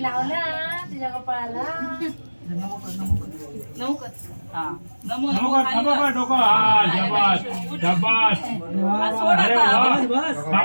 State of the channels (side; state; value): both; inverted; correlation -1.00